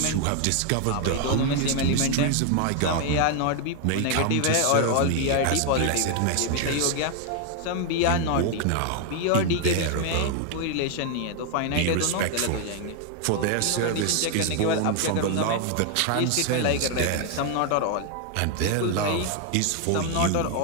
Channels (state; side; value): different; both; correlation 0.01